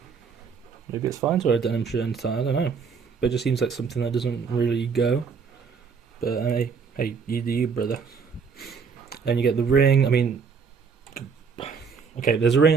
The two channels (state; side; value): quieter; left; 5.8 dB